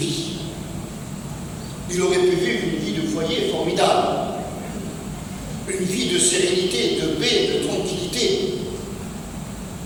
Ils auraient pu vivre une vie de foyer formidable. Une vie de sérénité, de paix, de tranquillité.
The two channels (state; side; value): identical; both; correlation 1.00